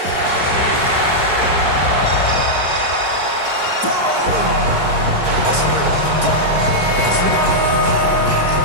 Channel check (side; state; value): left; late; 4.7 ms